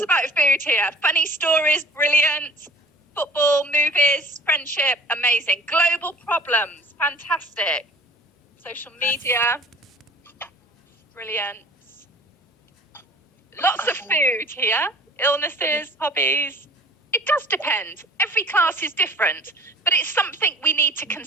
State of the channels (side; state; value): both; normal; correlation 0.47